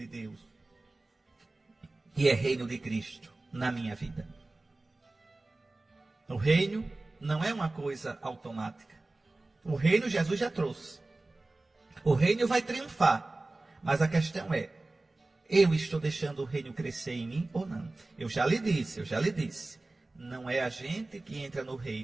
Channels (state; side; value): quieter; left; 3.0 dB